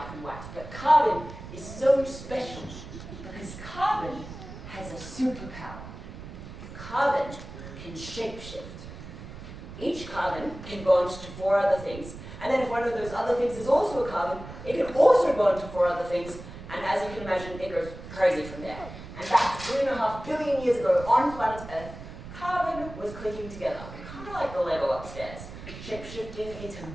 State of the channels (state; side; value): noise; right; rumble, 13 dB below the sound